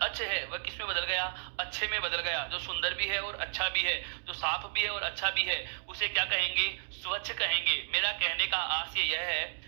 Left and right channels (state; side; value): silent; left; digital silence